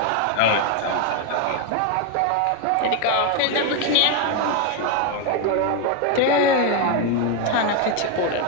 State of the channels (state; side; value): different; both; correlation 0.01